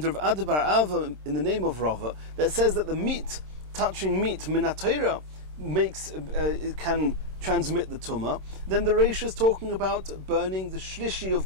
Rav Ada bar Ava in the name of Rava, that says that the meat, touching meat min HaTorah, it can transmit the tumah. Then the Reish is talking about burning the shlishi of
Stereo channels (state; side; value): late; left; 26 ms